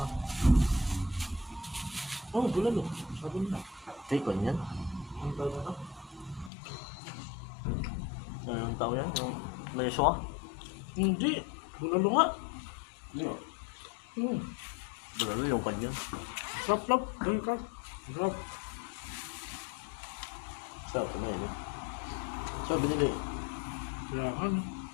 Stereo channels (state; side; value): drops out; right; at 6.5 s